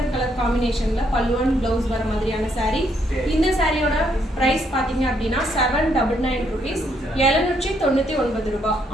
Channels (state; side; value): normal; both; correlation 0.72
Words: கலர் காம்பினேஷனில் பல்லு அண்ட் ப்ளவுஸ் வர மாதிரியான சாரீ. இந்த சாரியோட ப்ரைஸ் பார்த்தீங்க அப்படின்னா 799 rupees, 799 ரூபாய்.